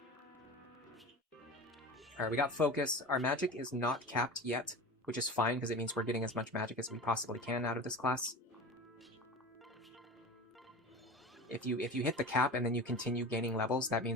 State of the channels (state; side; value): normal; both; correlation 0.31